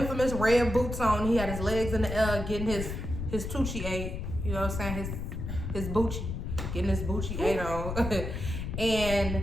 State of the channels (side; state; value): left; noise; rumble, 5 dB below the sound